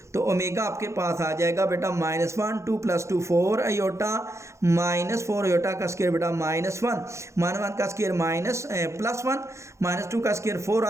तो ओमेगा आपके पास आ जाएगा बेटा -1 2 + 2 4 आयोटा -4 आयोटा का स्केयर बेटा -1 -1 का स्केयर +1 -2 का स्केयर 4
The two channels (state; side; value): late; left; 0.14 ms